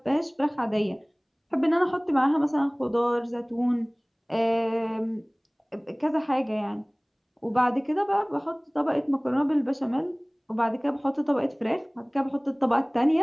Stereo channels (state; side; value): identical; both; correlation 1.00